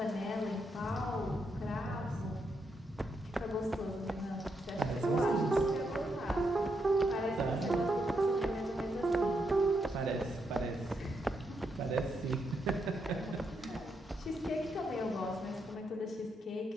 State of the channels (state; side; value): normal; both; correlation 0.80